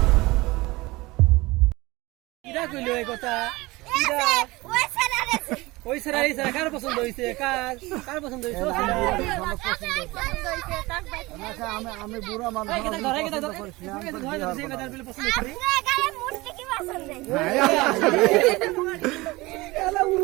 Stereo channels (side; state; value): left; quieter; 21.6 dB